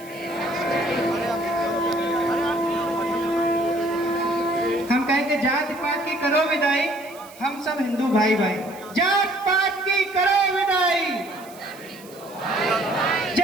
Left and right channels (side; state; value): right; noise; hiss, 21 dB below the sound